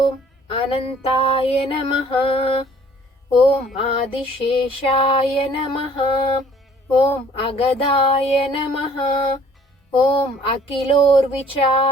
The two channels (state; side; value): normal; both; correlation 0.55